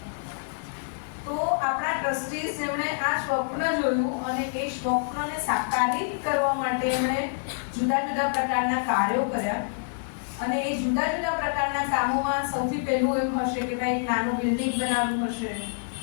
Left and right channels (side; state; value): right; silent; 60 dB below the other